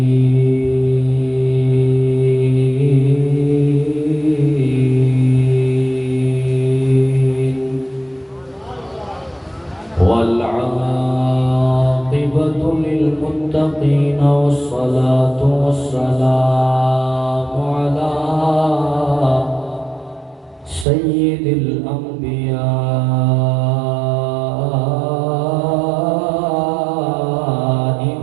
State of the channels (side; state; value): left; drops out; at 20.9 s